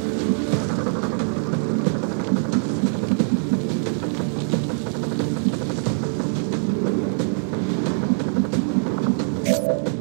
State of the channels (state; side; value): silent; left; digital silence